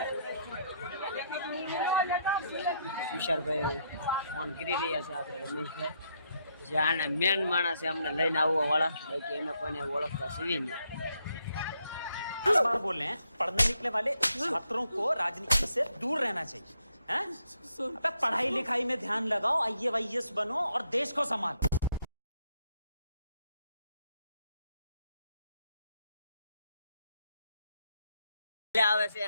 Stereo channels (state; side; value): inverted; both; correlation -0.75